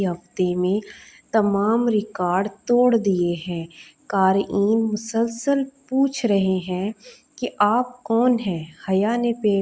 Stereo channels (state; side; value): identical; both; correlation 1.00